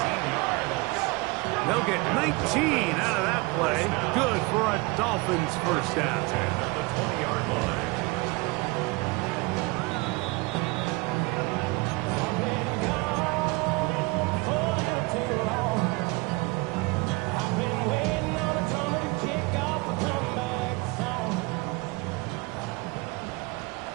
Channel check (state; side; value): quieter; left; 25.5 dB